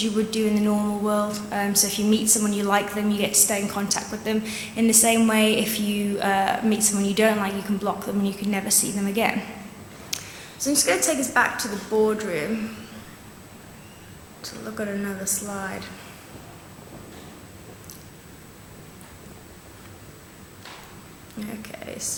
you would do in the normal world. So if you meet someone you like them, you get to stay in contact with them. In the same way, if you meet someone you don't like, you can block them and you can never see them again. So I'm just going to take us back to the boardroom to look at another slide. Okay,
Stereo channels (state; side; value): identical; both; correlation 1.00